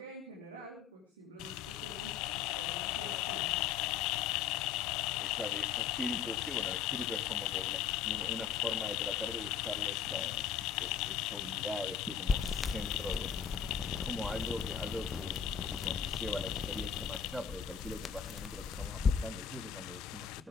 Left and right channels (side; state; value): right; quieter; 7.7 dB